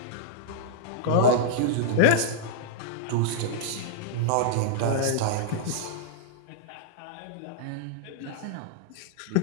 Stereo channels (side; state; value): both; different; correlation -0.02